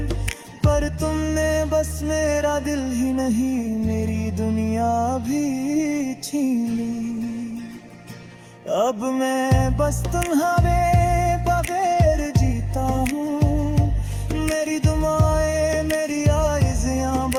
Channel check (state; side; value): identical; both; correlation 1.00